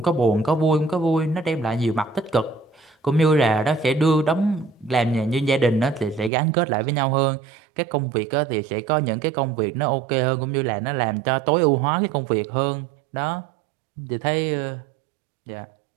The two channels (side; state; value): left; drops out; at 6.3 s